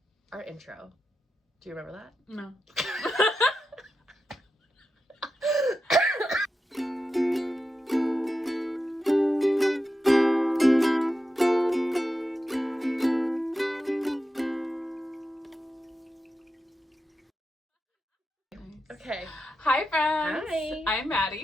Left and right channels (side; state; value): both; normal; correlation 0.89